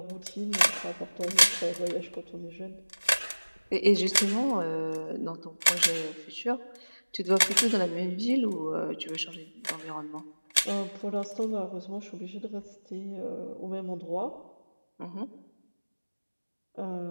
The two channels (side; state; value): both; inverted; correlation -1.00